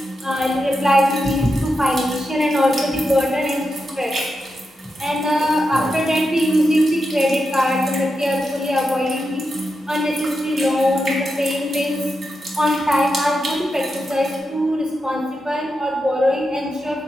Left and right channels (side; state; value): both; normal; correlation 0.87